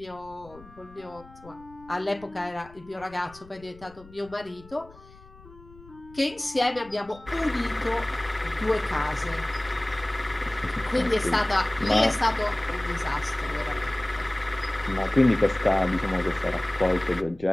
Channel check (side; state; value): left; noise; rumble, 22 dB below the sound